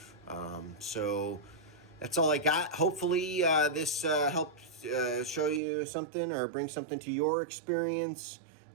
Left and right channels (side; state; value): left; drops out; at 5.6 s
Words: So that's all I got. Hopefully this helped show you something or bring something to your experience